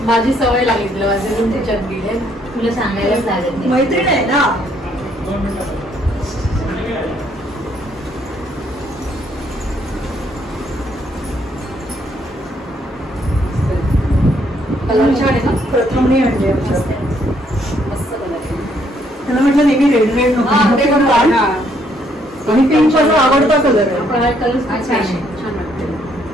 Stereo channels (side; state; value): both; normal; correlation 0.70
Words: माझी सवय लागली तुला, माझे त्याच्यात गेले. तुला सांगायलाच लागत नाही, मैत्रीण आहे ना. प्रथम नाही आणले मस्त कलर. त्याला म्हटलं नेहमी रेड रेड नको, आणि पिंक आवडता कलर आहे. कलर छान वाटते.